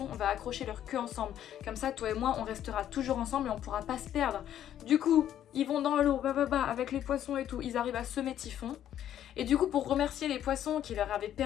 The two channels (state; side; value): quieter; right; 10.9 dB